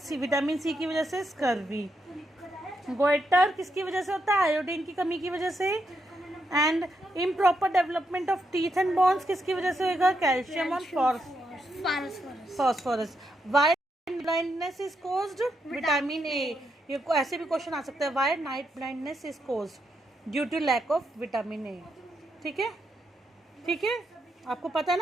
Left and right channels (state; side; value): normal; both; correlation 0.81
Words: vitamin C की वजह से स्कर्वी। गोइटर किसकी वजह से होता है, आयोडीन की कमी की वजह से। And improper development of teeth and bones किसकी वजह से होगा, कैल्शियम और phosphorus. Why blindness is caused, vitamin A. ये ऐसे भी क्वेश्चन आ सकता है, why night blindness is caused, due to lack of vitamin A. ठीक है, ठीक है, आपको पता है